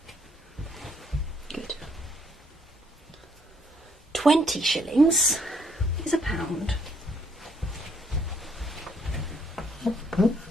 Good. 20 shillings is a pound.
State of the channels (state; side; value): normal; both; correlation 0.68